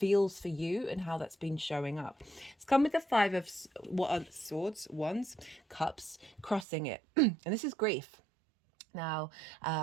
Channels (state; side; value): drops out; left; at 6.7 s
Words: for you and how that's been showing up. It's come with the Five of Swords, Wands, Cups, crossing it. And this is grief. Now,